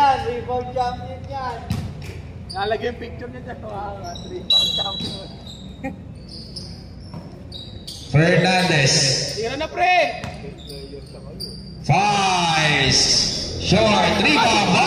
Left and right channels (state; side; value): identical; both; correlation 1.00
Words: Rebound champion yan. Nalagay yung picture niya dyan. Rebound champion. Fernandez. Tira na pre! Fires. Short. Rebound